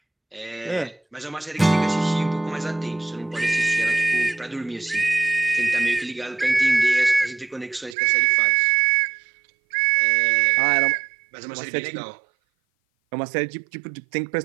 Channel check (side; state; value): left; drops out; at 8.0 s